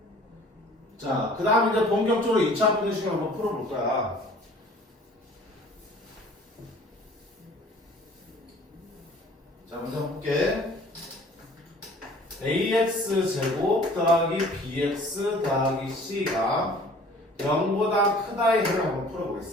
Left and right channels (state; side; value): normal; both; correlation 0.50